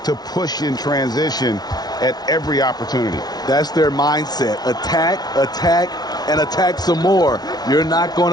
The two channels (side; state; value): right; late; 0.19 ms